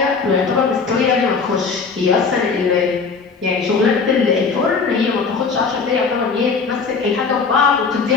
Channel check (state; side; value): quieter; right; 5.0 dB